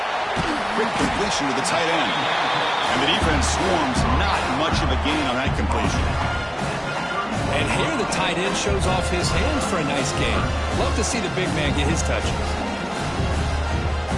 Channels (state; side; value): identical; both; correlation 1.00